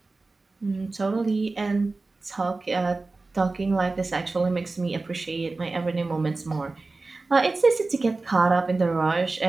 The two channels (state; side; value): quieter; left; 3.5 dB